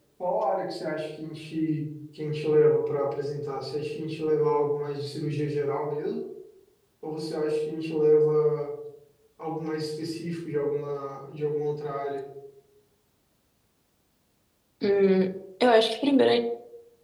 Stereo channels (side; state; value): both; identical; correlation 1.00